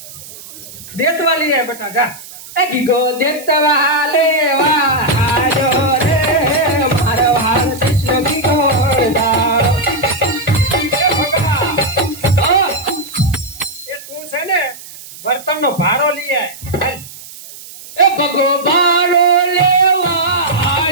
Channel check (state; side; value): noise; right; hiss, 16 dB below the sound